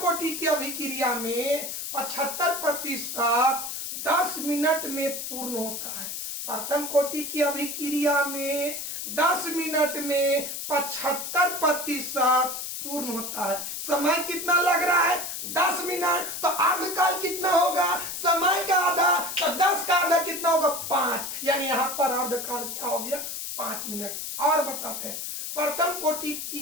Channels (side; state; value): left; noise; hiss, 6 dB below the sound